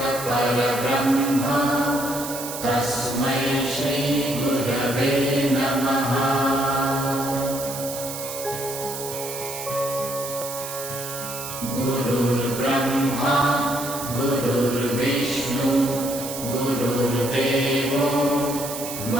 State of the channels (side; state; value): right; noise; hiss, 8 dB below the sound